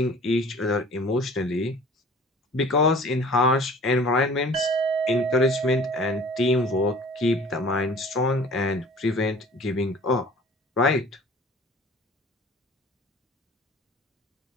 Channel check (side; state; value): both; normal; correlation 0.47